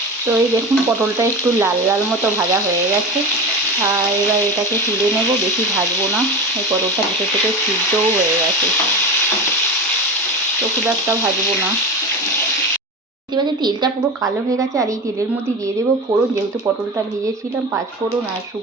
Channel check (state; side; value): normal; both; correlation 0.26